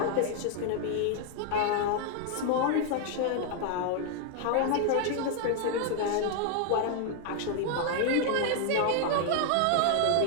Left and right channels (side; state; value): both; different; correlation 0.00